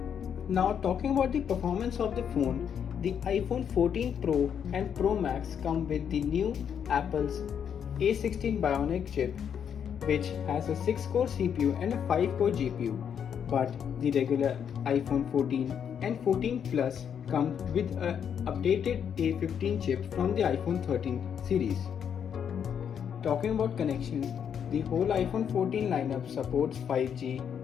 Now talking about the performance of the phone, the iPhone 14 Pro and Pro Max come with the new Apple's A16 Bionic chip, which has a 6-core CPU and a 5-core GPU, but the regular iPhone 14 and 14 Plus come with an updated A15 chip from the iPhone 13 series. Talking about connections, the whole iPhone 14 lineup supports 5G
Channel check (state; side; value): quieter; right; 8.1 dB